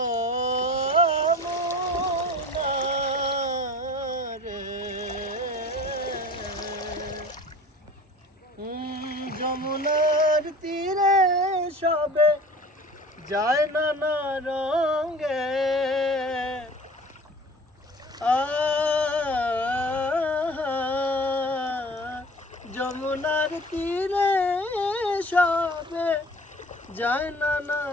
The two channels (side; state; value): both; normal; correlation 0.43